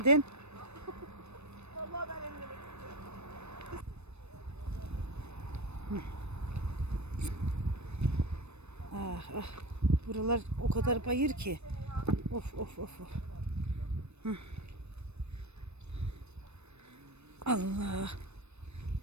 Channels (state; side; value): late; left; 0.81 ms